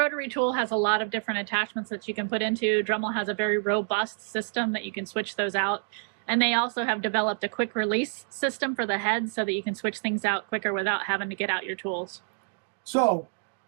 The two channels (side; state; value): left; silent; 59 dB below the other